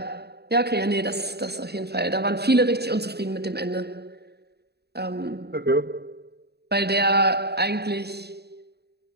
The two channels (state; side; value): late; left; 0.48 ms